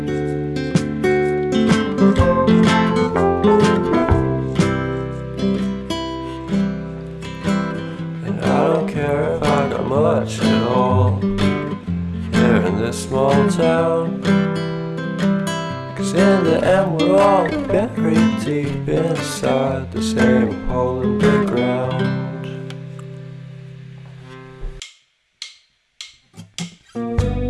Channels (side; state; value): both; identical; correlation 1.00